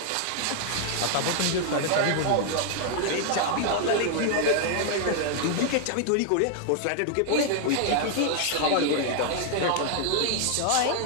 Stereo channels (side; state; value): both; different; correlation 0.00